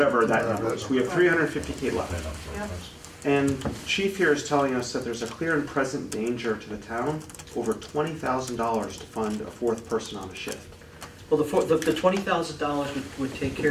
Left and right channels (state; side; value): identical; both; correlation 1.00